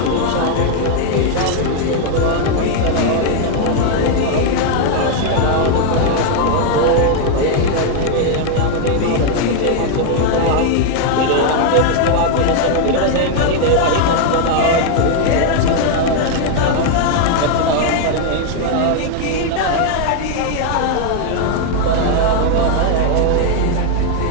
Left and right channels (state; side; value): different; both; correlation 0.00